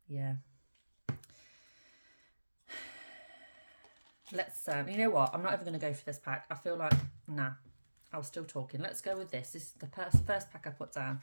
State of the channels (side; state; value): both; inverted; correlation -1.00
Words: Yeah. Let's, you know what? I'm not even going to go for this pack. I feel like, nah, I was still talking. Let's go with this. This is the first pack I put down.